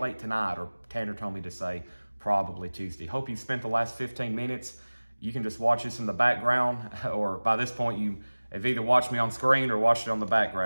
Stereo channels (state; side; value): inverted; both; correlation -1.00